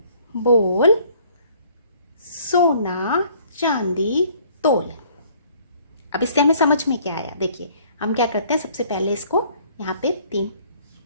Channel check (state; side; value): inverted; both; correlation -0.58